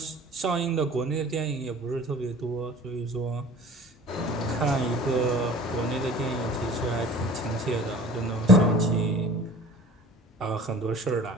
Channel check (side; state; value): both; normal; correlation 0.44